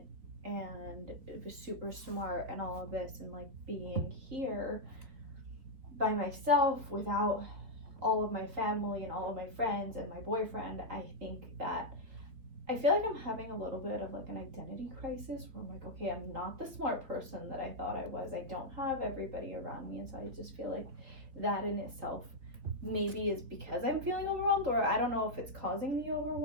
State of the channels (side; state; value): left; late; 4.1 ms